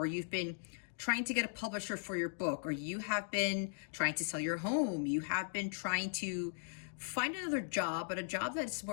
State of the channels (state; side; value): silent; right; digital silence